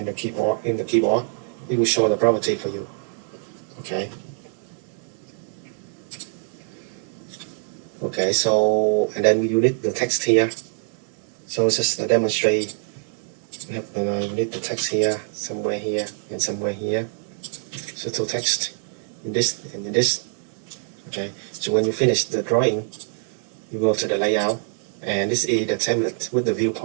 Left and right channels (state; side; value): silent; left; digital silence